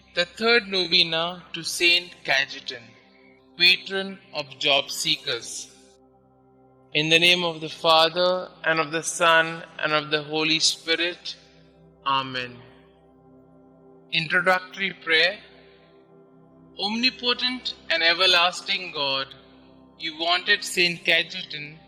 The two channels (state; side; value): identical; both; correlation 1.00